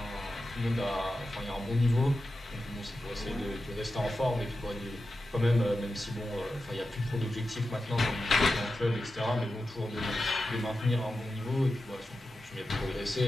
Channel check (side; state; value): both; normal; correlation 0.92